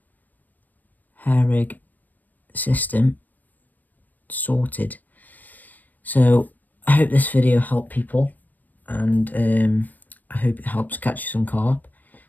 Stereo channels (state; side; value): late; right; 0.085 ms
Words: hair rig system sorted. So I hope this video helped people, and I hope it helps catch you some carp,